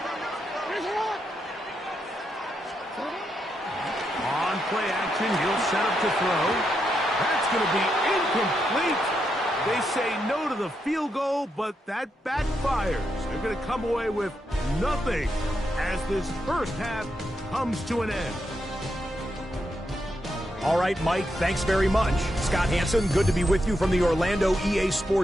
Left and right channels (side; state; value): both; normal; correlation 0.82